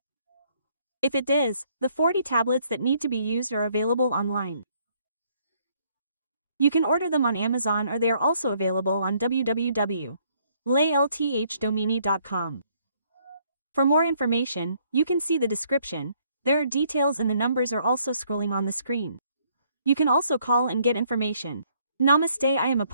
If it does, the 40 tablets that need to be used are available online. You can order them on Amazon, or they are also available on www.laylthdomini.com. For more information, you can see the description. There are details and the numbers are also scrolling on the screen. You can also call and get information. Namaste, I am a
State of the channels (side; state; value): both; inverted; correlation -0.67